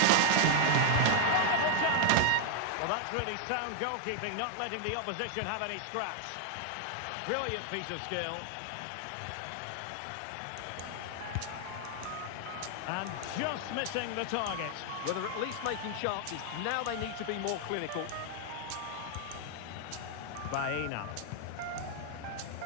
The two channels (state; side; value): different; both; correlation -0.01